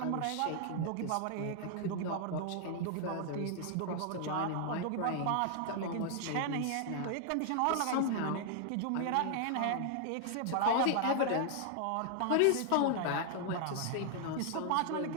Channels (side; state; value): both; different; correlation 0.00